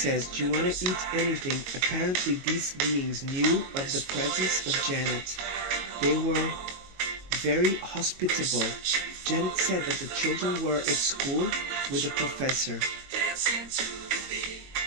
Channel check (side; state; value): left; late; 22 ms